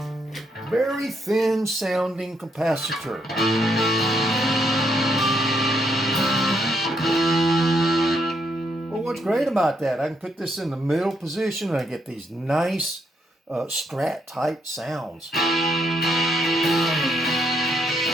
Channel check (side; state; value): both; normal; correlation 0.75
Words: Very thin sounding capacitor. What's great about that, I can put this in the middle position and I get these nice strat type sounds.